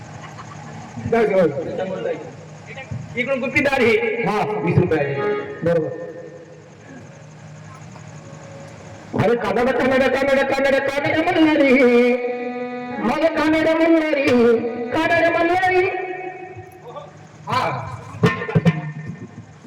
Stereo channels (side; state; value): both; identical; correlation 1.00